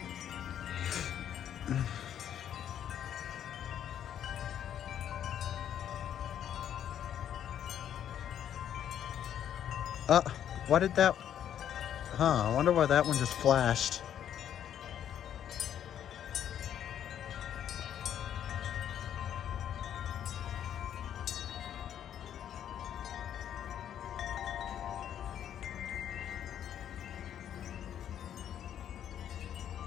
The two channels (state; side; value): quieter; right; 9.9 dB